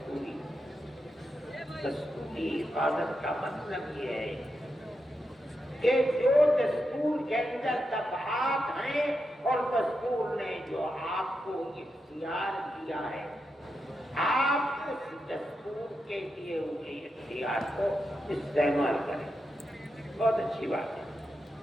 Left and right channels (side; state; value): both; normal; correlation 0.86